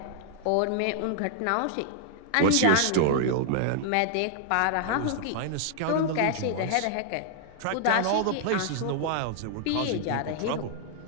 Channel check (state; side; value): different; both; correlation -0.01